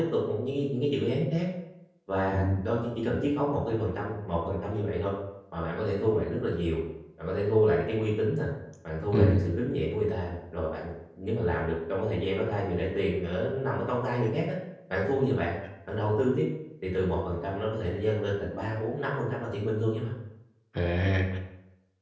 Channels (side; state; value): both; identical; correlation 1.00